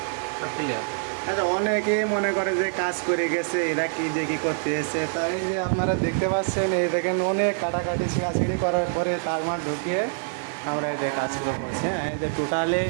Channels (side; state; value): left; silent; digital silence